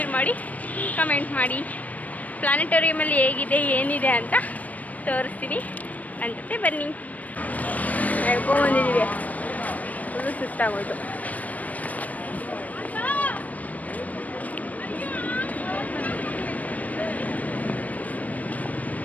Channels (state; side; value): late; right; 0.073 ms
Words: ಮಾಡಿ, ಕಮೆಂಟ್ ಮಾಡಿ. ಪ್ಲಾನೆಟೋರಿಯಮಲ್ಲಿ ಹೇಗಿದೆ ಏನಿದೆ ಅಂತ ತೋರಿಸ್ತೀನಿ. ನನ್ನ ಜೊತೆ ಬನ್ನಿ. ಹೇಳ್ಕೊಂಬಂದಿದ್ದೀವಿ, ಫುಲ್ಲು ಸುಸ್ತಾಗೋಯ್ತು.